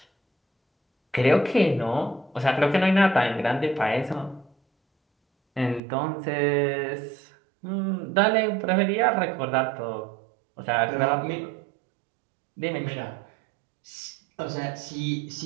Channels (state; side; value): drops out; left; at 5.8 s